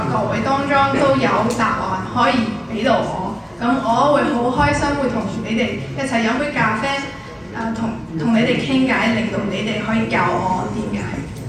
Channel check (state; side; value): identical; both; correlation 1.00